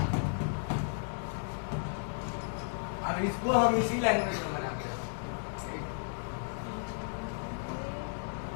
अब इसको हम इसी लैंग्वेज में बनाते हैं।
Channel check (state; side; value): silent; right; digital silence